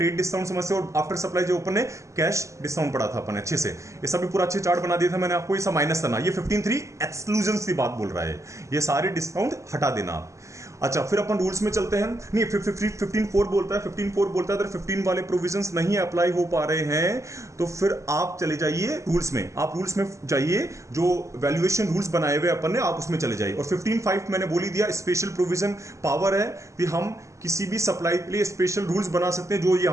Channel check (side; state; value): left; late; 0.15 ms